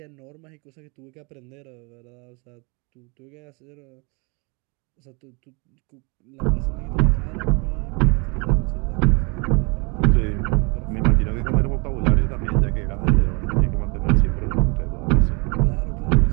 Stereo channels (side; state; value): left; quieter; 31.1 dB